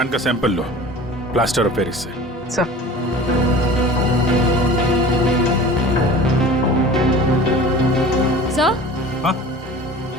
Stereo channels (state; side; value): normal; both; correlation 0.40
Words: का सैंपल लो प्लास्टर ऑफ पेरिस से। Sir sir?